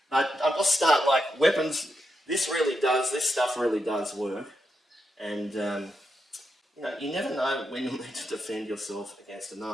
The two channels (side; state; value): both; normal; correlation 0.84